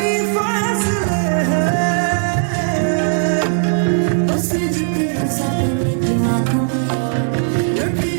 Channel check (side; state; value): left; silent; digital silence